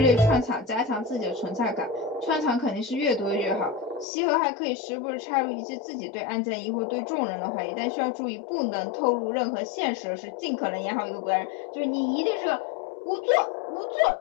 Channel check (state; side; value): drops out; right; at 4.0 s